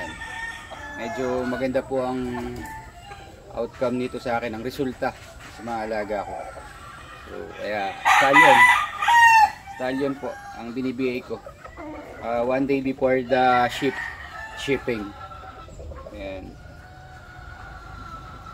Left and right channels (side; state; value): both; identical; correlation 1.00